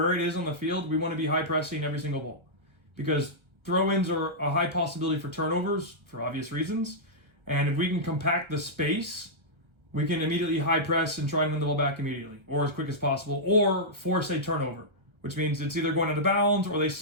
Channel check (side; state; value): left; late; 1.3 ms